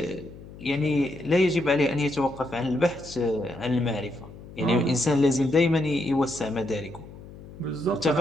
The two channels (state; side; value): noise; left; hum, 17 dB below the sound